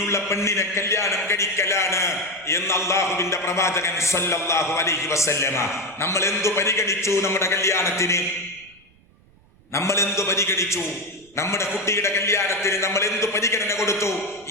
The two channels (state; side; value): noise; right; rumble, 29 dB below the sound